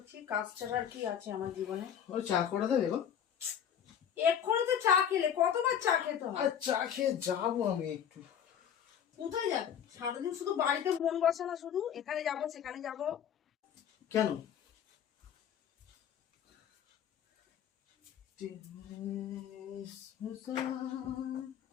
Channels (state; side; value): quieter; right; 8.8 dB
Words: কাজ ছাড়া আর কি আছে আমার জীবনে? ওই চা করে দেবে গো? এক্ষুনি তো চা খেলে, কতবার চা খেতে হয়? আর চা খেয়ে যাবো আমি একটু। কোথায় যাবে? সারাদিন শুধু বাড়িতে মন বসে না, শুধু এখানে যাব সেখানে যাব। কেন?